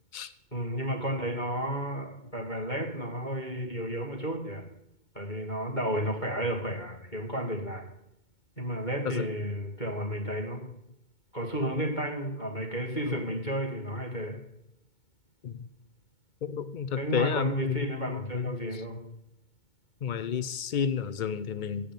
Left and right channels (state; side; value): late; right; 2.2 ms